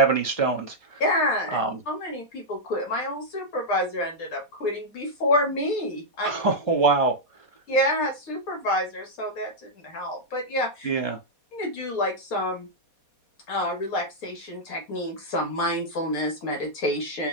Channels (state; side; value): late; right; 4.2 ms